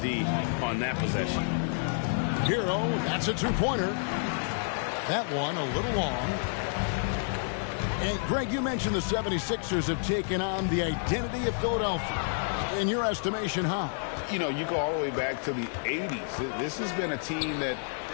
on that possession. Hero, that's a two-pointer. That one a little long. And, Greg, you mentioned the 76ers have taken on the identity of Philadelphia. In your estimation, how? You know, you go all the way back to the 80s. This has been a team that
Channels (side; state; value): right; silent; digital silence